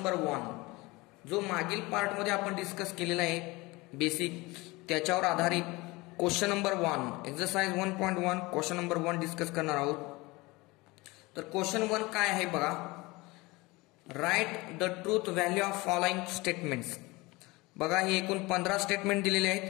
1 जो मागील पार्ट मध्ये आपण डिस्कस केलेला आहे बेसिक त्याच्यावर आधारित question number 1 exercise 1.1 question number 1 discuss करणार आहोत। तर क्वेश्चन 1 काय आहे बघा, right the truth value of following statements. बघा हे एकूण 15 स्टेटमेंट दिलेले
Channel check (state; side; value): quieter; right; 22.8 dB